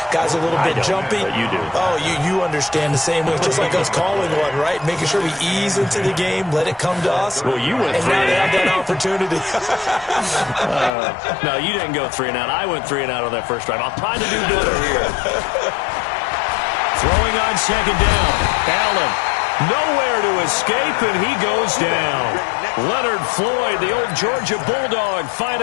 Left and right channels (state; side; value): drops out; right; at 10.9 s